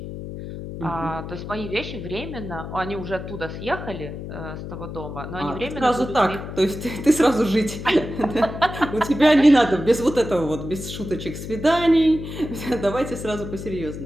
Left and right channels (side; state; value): left; noise; hum, 9 dB below the sound